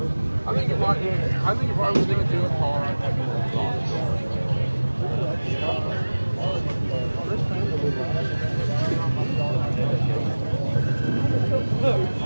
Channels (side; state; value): both; inverted; correlation -1.00